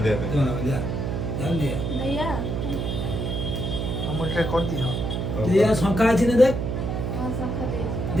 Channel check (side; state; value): right; noise; hum, 2 dB below the sound